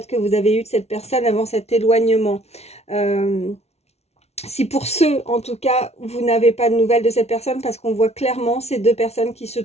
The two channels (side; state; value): right; late; 0.31 ms